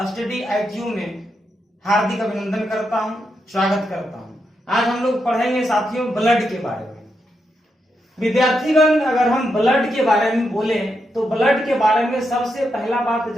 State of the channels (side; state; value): both; normal; correlation 0.83